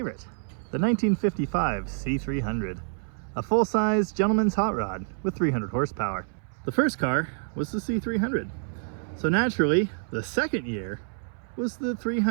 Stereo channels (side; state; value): left; silent; 59 dB below the other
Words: the 1955 C300, a full-size gentleman's hot rod with 300 horsepower. The first car was the C300, so naturally, the second year was the